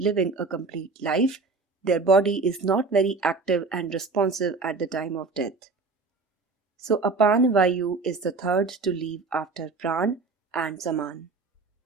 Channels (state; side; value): quieter; left; 4.1 dB